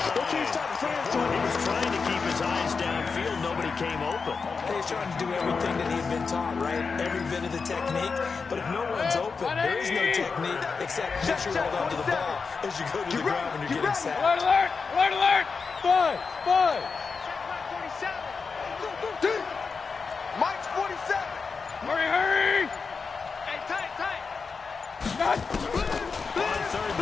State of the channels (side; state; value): right; quieter; 5.0 dB